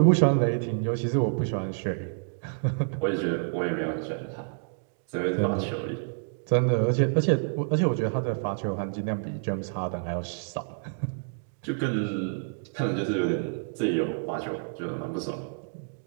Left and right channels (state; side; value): silent; left; digital silence